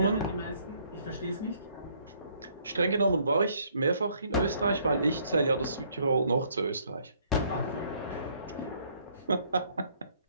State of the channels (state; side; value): inverted; both; correlation -0.65